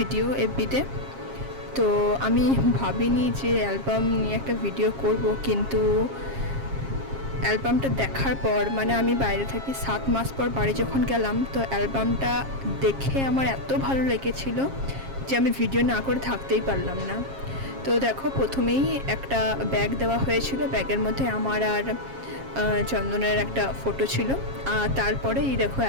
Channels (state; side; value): late; left; 7.4 ms